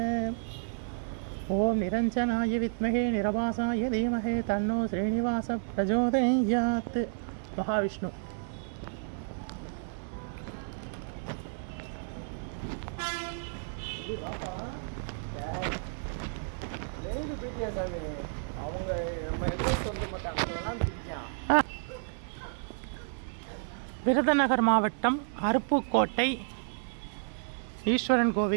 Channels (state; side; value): silent; left; 57 dB below the other